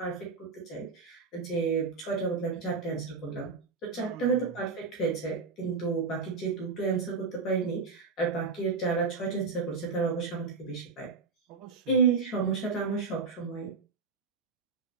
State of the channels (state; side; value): quieter; left; 4.7 dB